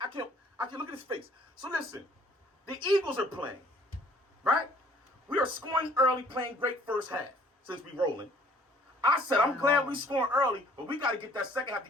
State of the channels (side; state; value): both; normal; correlation 0.57